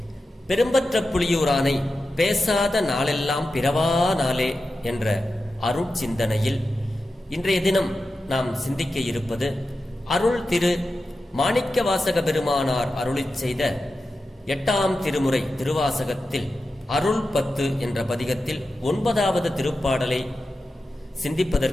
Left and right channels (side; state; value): both; normal; correlation 0.91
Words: பெரும்பற்ற புலியூரானை பேசாத நாளெல்லாம் பிறவா நாளே என்ற அருட்சிந்தனையில் இன்றைய தினம் நாம் சிந்திக்க இருப்பது அருள் திரு மாணிக்கவாசக பெருமானார் அருளிச் செய்த 8ஆம் திருமுறை திருவாசகத்தில் அருள் 10 என்ற பதிகத்தில் 9வது திருப்பாடலை